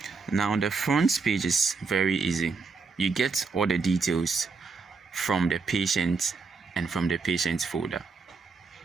Now, the front page is very easy. You get all the details from the patient and from the patient's folder.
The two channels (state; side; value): quieter; left; 4.6 dB